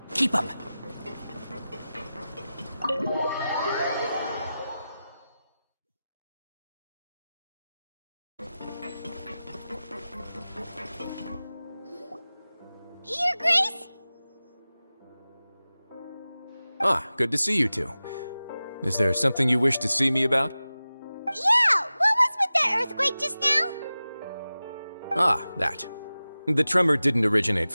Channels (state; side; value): inverted; both; correlation -0.96